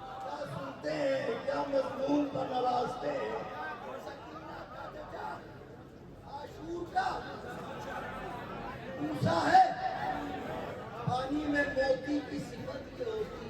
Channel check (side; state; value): both; identical; correlation 1.00